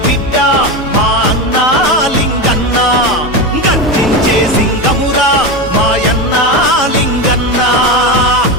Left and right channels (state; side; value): normal; both; correlation 0.18